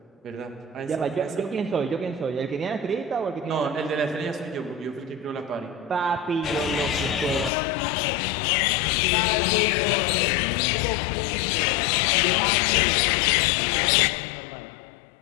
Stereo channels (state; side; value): drops out; right; at 7.5 s